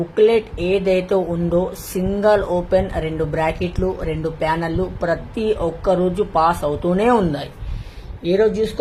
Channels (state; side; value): identical; both; correlation 1.00